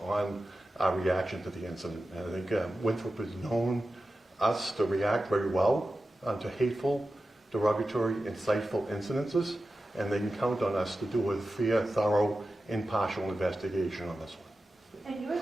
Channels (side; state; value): both; normal; correlation 0.93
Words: on our reaction to the incident. And I think Winthrop has known us to react very well to hateful, derogatory, insightful incidences, and they can count on us to do a fair, thorough, impartial investigation on this one. And you were